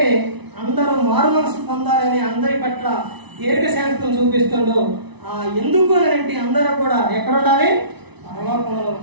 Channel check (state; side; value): late; left; 1.0 ms